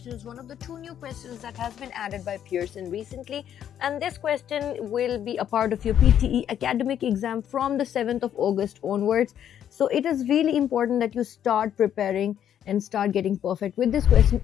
is one of the two new questions that has been added by Pearson recently, and this question will be a part of your PTE Academic exam from the 7th of August onwards. So it is really important that you start preparing and start getting perfect with this question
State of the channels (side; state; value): right; quieter; 9.9 dB